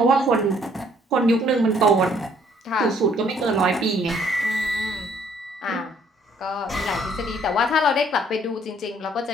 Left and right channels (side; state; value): both; normal; correlation 0.63